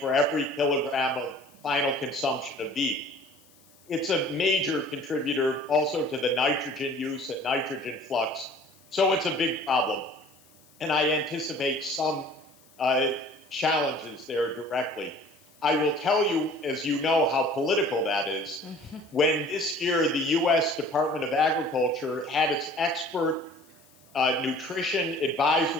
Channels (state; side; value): noise; left; hiss, 29 dB below the sound